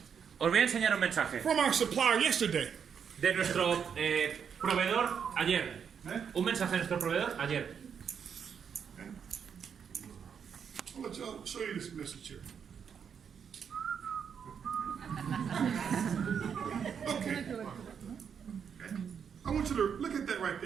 Os voy a enseñar un mensaje from our supplier yesterday. de nuestro proveedor ayer. Un mensaje de nuestro proveedor ayer. I'll show you this message here. Okay. I want you to look at that right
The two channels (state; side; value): quieter; left; 7.3 dB